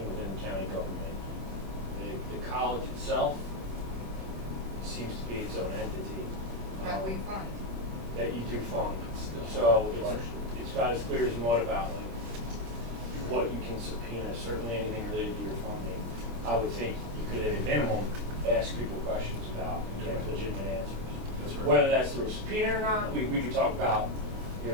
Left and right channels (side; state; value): left; late; 26 ms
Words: within the county government. The college itself seems to be its own entity. That we fund. That you do fund. So it's about as clear as mud about like what you can subpoena, certainly anything related to your funding. I would think you could at a minimum ask people questions about and get legitimate answers. That's right. Whether that's through a subpoena or not, we could talk about, you